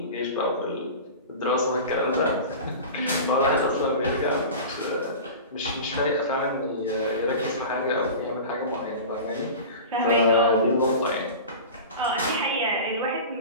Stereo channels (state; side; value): inverted; both; correlation -0.33